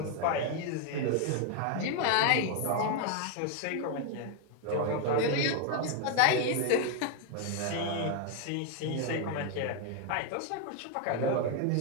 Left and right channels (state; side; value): different; both; correlation 0.01